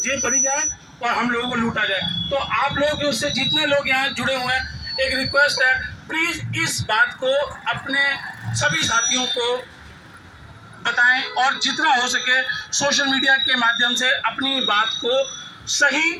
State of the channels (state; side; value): identical; both; correlation 1.00